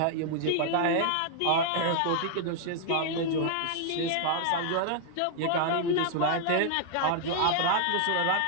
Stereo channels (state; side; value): different; both; correlation -0.01